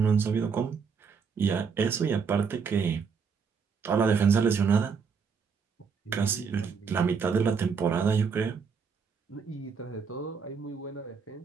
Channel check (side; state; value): left; quieter; 5.9 dB